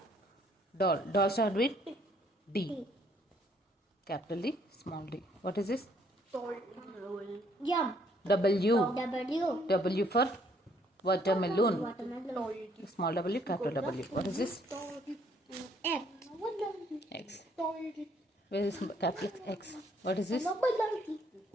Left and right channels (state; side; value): normal; both; correlation 0.65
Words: Doll start with D. Capital D, small d. What is this? W. W for watermelon. Small W, capital W. What is this? X. Where is capital X? What is this?